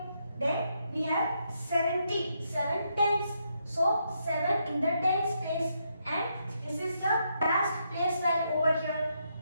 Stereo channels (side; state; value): both; inverted; correlation -0.79